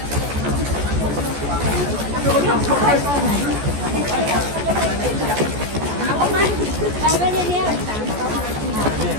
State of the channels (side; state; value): left; late; 14 ms